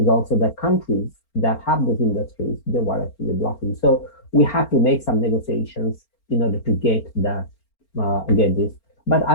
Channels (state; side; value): late; right; 4.4 ms